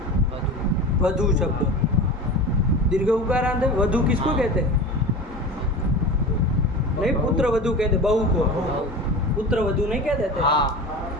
वधू शब्द दीर्घ उकारांत है। वधू किसको कहते हैं? नहीं, पुत्र वधू कहते, बहू को पुत्र वधू नहीं कह देते? हाँ।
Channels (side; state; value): both; normal; correlation 0.31